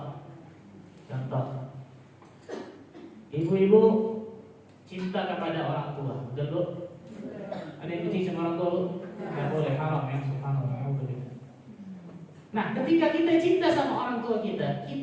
ibu-ibu cinta kepada orang tua, betul bu? Ada yang benci sama orang tua bu? Tidak boleh, haram ya, subhanallah. Nah, ketika kita cinta sama orang tua kita,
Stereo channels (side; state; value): both; identical; correlation 1.00